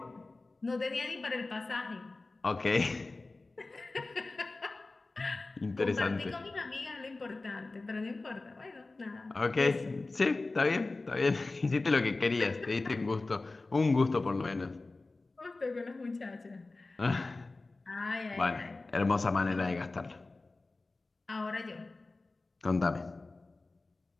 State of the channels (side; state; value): right; quieter; 3.3 dB